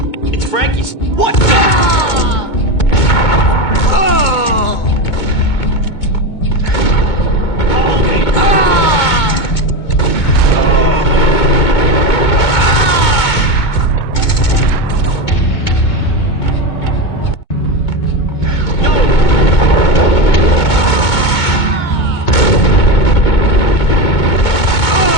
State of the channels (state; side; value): late; right; 2.2 ms